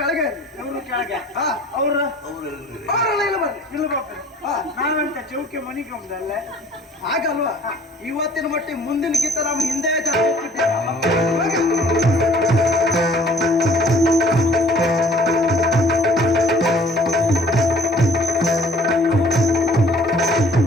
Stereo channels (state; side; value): normal; both; correlation 0.53